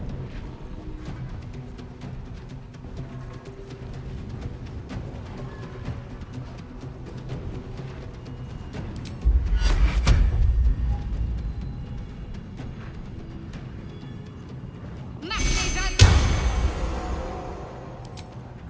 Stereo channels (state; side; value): identical; both; correlation 1.00